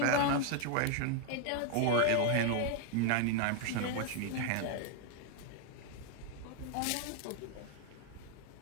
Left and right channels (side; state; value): both; different; correlation 0.01